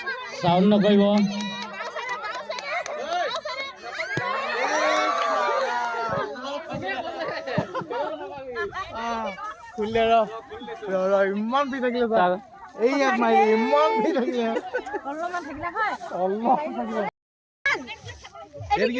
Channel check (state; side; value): identical; both; correlation 1.00